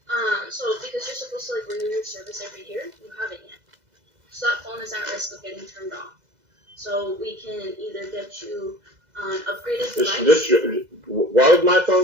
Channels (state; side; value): late; left; 2.0 ms